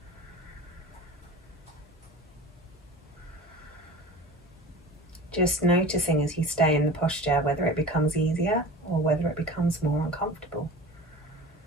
Just noticing as you stay in the posture whether it becomes easier or whether it becomes more uncomfortable.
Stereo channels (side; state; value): both; normal; correlation 0.37